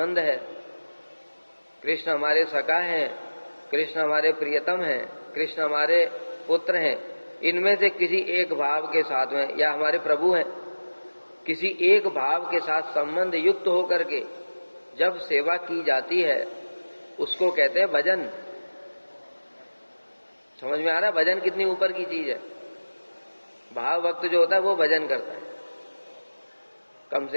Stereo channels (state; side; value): inverted; both; correlation -1.00